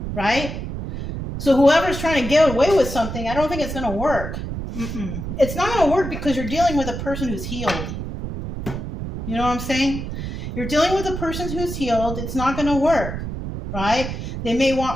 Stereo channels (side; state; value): right; noise; rumble, 6 dB below the sound